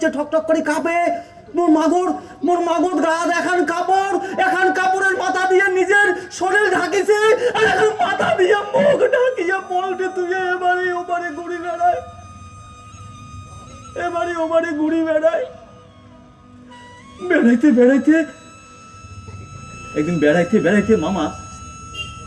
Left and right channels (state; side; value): identical; both; correlation 1.00